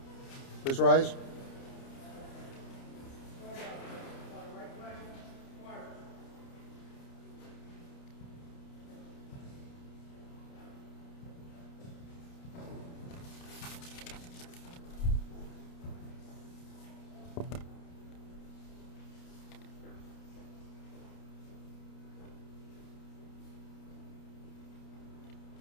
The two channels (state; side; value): late; right; 29 ms